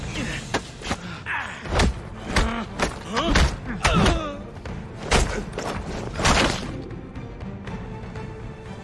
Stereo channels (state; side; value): identical; both; correlation 1.00